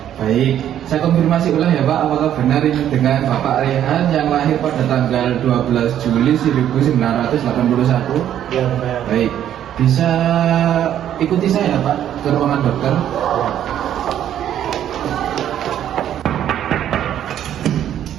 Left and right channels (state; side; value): quieter; left; 10.7 dB